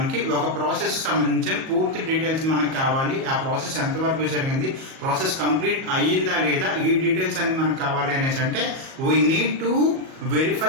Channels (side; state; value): left; late; 37 ms